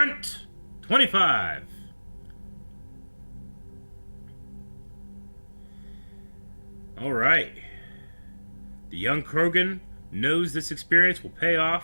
25. Alright. The young Krogan knows this experience will pay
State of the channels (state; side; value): inverted; both; correlation -1.00